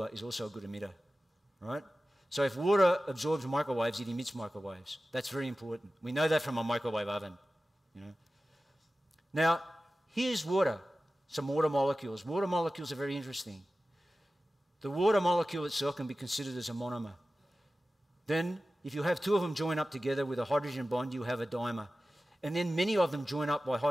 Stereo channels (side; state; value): both; normal; correlation 0.95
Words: is also a good emitter, right? So if water absorbs microwaves, it emits microwaves. That's very important. We know that from a microwave oven, you know. Now, here's water, some water molecules. Water molecules are very interesting. The water molecule itself can be considered as a monomer. Then, if you have 2 of them join up together with a hydrogen bond, you have a dimer. And then many of them join up by